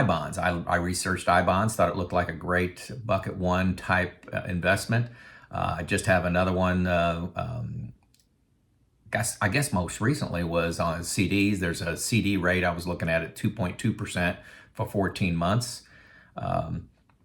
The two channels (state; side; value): identical; both; correlation 1.00